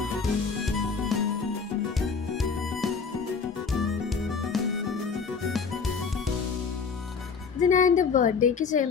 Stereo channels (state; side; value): quieter; right; 5.4 dB